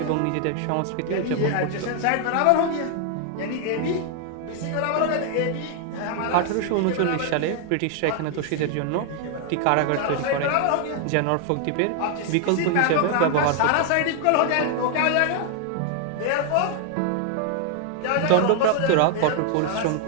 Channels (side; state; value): both; different; correlation 0.00